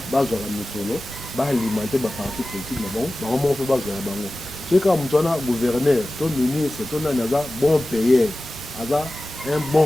bah je ramène solo, bah alimenter bah parti politique mais bon, bah on fait bah je la bango. C'est quand on a gouverneur, ton ministre, ton anaza bon payeur, asa un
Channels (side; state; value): both; normal; correlation 0.96